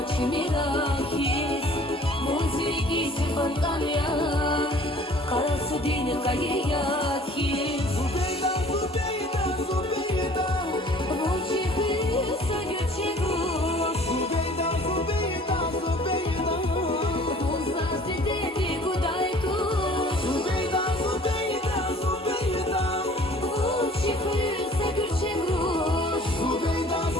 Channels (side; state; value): both; normal; correlation 0.51